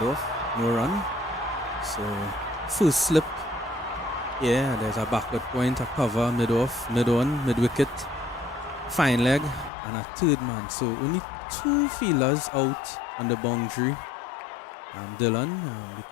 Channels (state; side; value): drops out; right; at 9.7 s